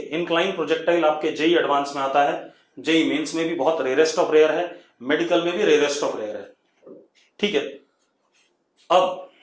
इंक्लाइन प्रोजेक्टाइल आपके जेई एडवांस में आता है, जेई मेंस में भी बहुत रेयरेस्ट ऑफ रेयर है, मेडिकल में भी रेयरेस्ट ऑफ रेयर है। ठीक है,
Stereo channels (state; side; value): identical; both; correlation 1.00